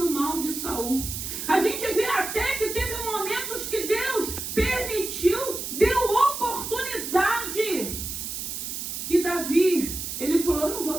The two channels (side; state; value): right; noise; hiss, 5 dB below the sound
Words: o mal de Saul. A gente vê até que teve momentos que Deus permitiu, deu oportunidade. E Davi, ele falou, eu não vou